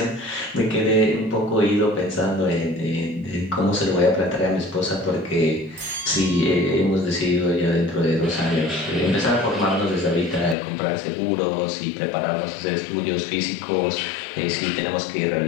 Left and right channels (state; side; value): drops out; right; at 10.6 s